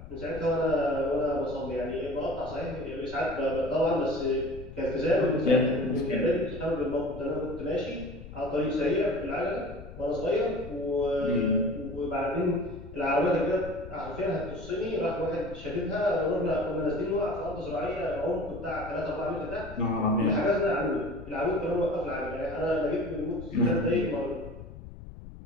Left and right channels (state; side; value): noise; left; rumble, 14 dB below the sound